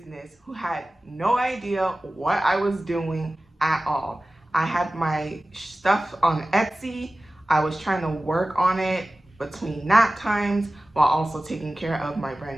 who had no idea what I was doing at all. I had my stuff on Etsy. I was trying to work on it between nap times while also taking care of my brand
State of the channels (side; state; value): both; normal; correlation 0.96